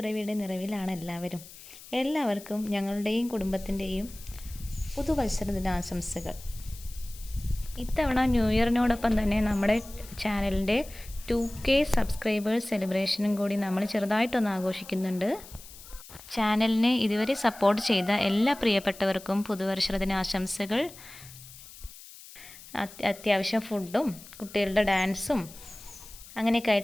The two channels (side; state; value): left; noise; hiss, 18 dB below the sound